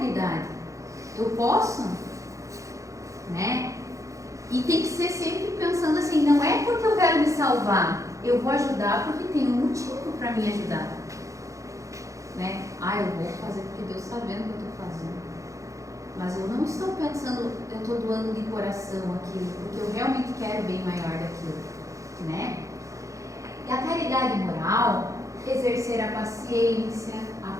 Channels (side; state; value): left; late; 0.15 ms